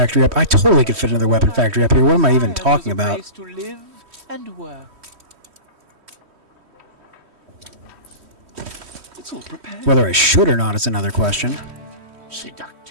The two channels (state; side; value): late; left; 3.1 ms